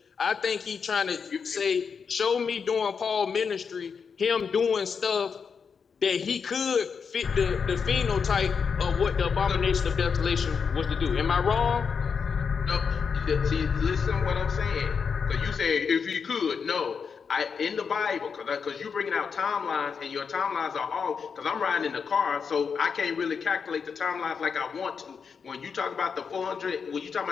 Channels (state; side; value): quieter; right; 6.0 dB